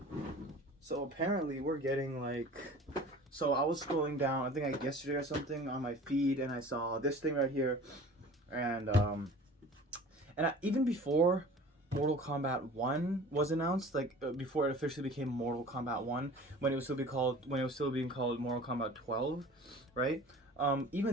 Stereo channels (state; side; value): normal; both; correlation 0.43